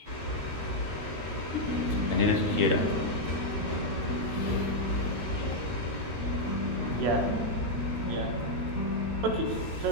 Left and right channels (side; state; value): left; late; 13 ms